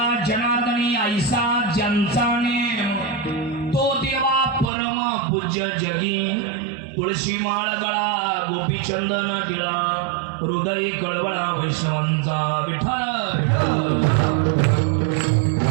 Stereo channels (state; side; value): drops out; left; at 4.7 s